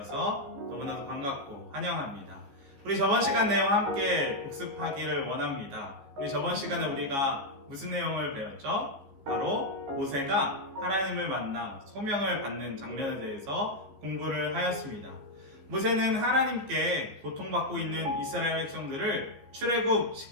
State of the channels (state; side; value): late; left; 14 ms